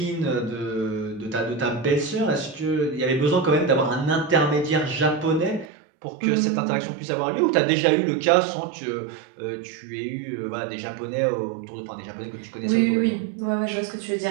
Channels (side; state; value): left; drops out; at 5.7 s